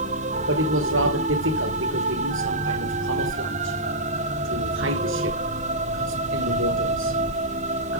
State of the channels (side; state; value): both; normal; correlation -0.12